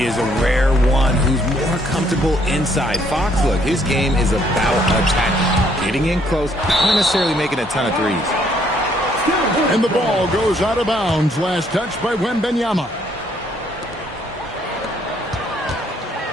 is a rare one who's more comfortable inside. Fox, look, his game is about attack. Getting in close, not necessarily making a ton of threes. And the ball goes out of bounds. Last touch by Wembanyama.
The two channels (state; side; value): normal; both; correlation 0.67